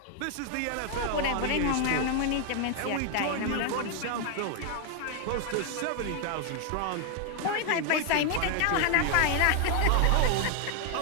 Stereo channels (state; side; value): different; both; correlation 0.00